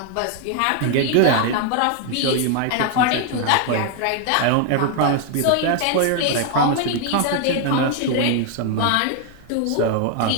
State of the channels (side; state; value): both; different; correlation 0.00